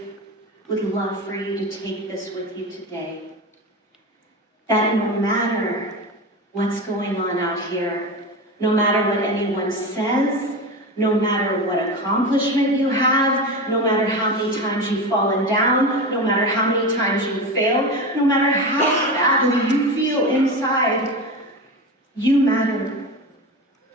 would love for you to take this with you today. That no matter what's going on out here, no matter what anyone says, no matter what accomplishment you have, no matter how many times you've fallen down, no matter how many times you've failed, no matter how badly you feel inside, you matter.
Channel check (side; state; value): both; normal; correlation 0.23